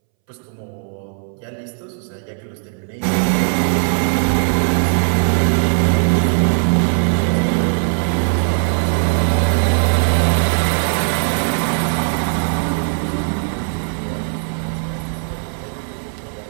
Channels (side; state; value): left; silent; 65 dB below the other